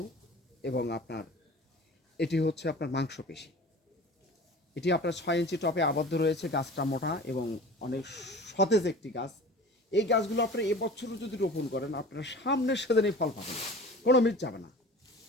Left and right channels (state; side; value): normal; both; correlation 0.40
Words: এবং আপনার এটি হচ্ছে আপনার মাংসপেশি। এটি আপনার 6 ইঞ্চি টপে আবদ্ধ রয়েছে। গাছটা মোটা এবং অনেক সতেজ একটি গাছ। এই গাছগুলো আপনারা এবছরও যদি রোপণ করেন, আপনারা সামনের সেদিনই ফল পাবেন, কোনো মিস যাবে না,